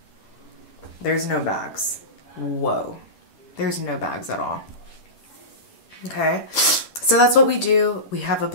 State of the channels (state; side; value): late; right; 10 ms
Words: there's no bags. Whoa, there's no bags at all. Okay, so that's what we do. We have a